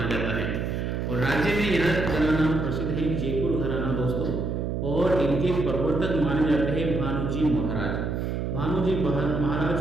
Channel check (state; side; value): noise; right; hum, 2 dB below the sound